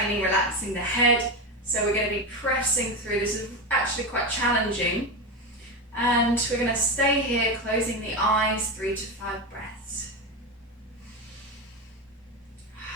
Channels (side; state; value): both; normal; correlation 0.16